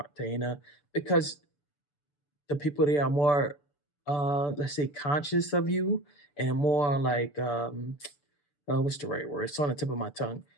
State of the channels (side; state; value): right; late; 6.9 ms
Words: because the people there are more let's say conscious of you and more like what's the right word? It's on the tip of my tongue.